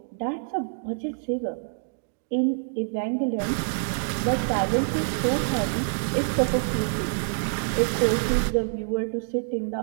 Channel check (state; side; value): silent; left; digital silence